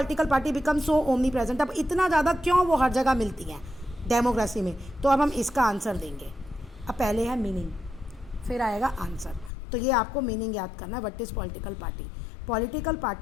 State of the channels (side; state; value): right; drops out; at 9.5 s